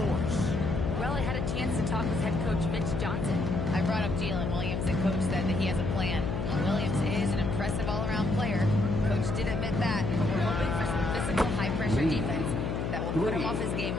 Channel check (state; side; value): noise; left; hum, 1 dB below the sound